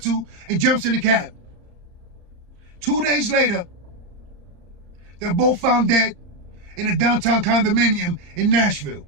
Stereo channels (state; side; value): late; left; 35 ms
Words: to and jumps in the cab. 2 days later, they're both found dead in a downtown condominium in Nashville.